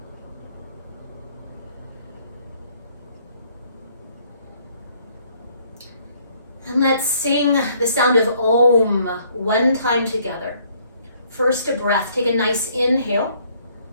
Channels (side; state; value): both; inverted; correlation -0.64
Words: And let's sing the sound of Om one time together. First a breath. Take a nice inhale.